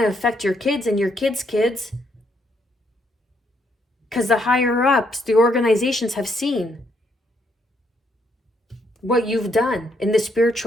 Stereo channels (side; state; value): both; normal; correlation 0.74